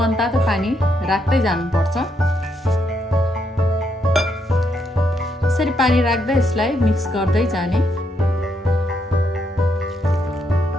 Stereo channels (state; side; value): normal; both; correlation 0.77